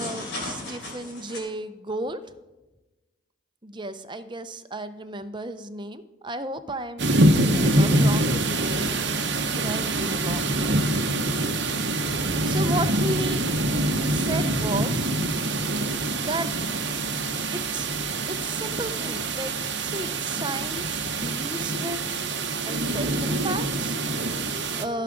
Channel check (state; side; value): normal; both; correlation 0.50